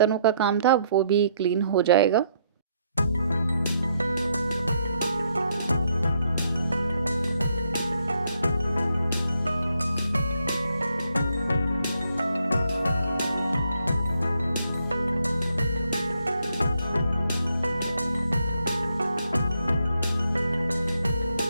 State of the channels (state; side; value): inverted; both; correlation -0.73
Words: का काम था वो भी क्लीन हो जाएगा।